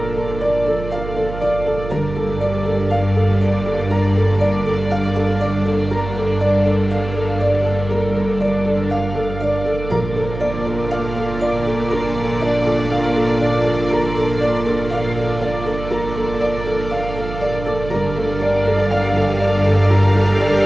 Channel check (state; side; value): noise; right; hum, 9 dB below the sound